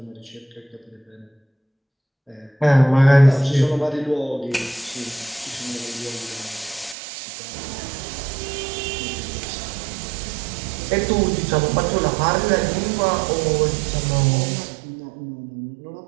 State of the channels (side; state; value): left; drops out; at 7.0 s